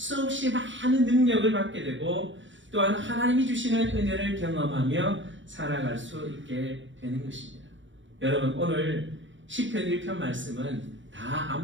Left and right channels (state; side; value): late; left; 0.55 ms